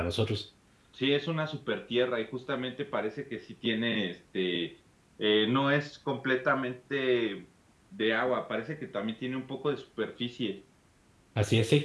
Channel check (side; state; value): both; identical; correlation 1.00